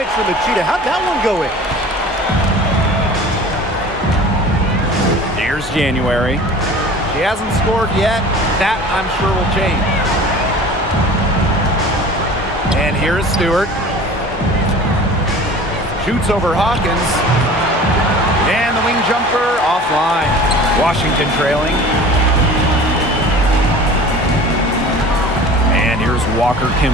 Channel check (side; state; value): both; normal; correlation 0.42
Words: for Machida. How'd that one go in? Here's January. She hasn't scored yet. That, I'm sure, will change. And here's Stewart. Shoots over Hawkins. And the wing jumper offline. Washington trailing. And here's Walker